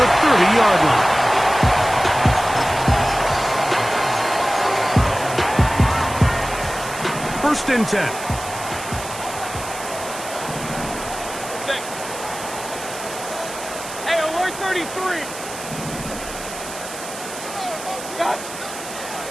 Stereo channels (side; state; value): right; noise; hiss, 11 dB below the sound